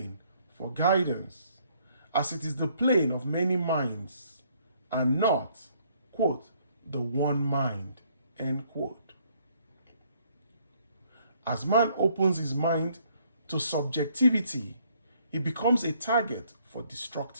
for guidance, as it is the plane of many minds and not, quote, the one mind, end quote. As man opens his mind to subjectivity, he becomes a target for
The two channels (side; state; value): both; inverted; correlation -0.66